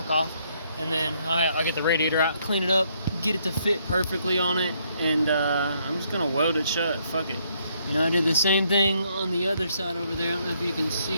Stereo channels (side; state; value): both; inverted; correlation -0.71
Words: off. And then I'll get the radiator out, clean it up, get it to fit perfectly on it, and I'm just gonna weld it shut. Fuck it. You know, I did the same thing on the other side over there. I don't know if you can see